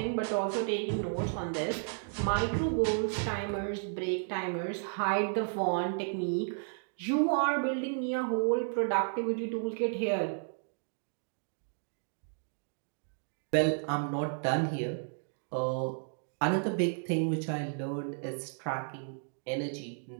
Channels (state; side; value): silent; left; digital silence